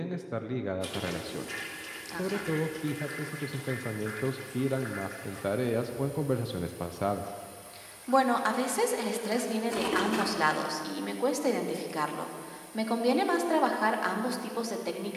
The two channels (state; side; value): identical; both; correlation 1.00